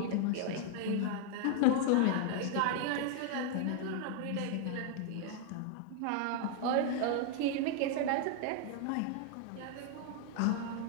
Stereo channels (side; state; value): both; different; correlation 0.00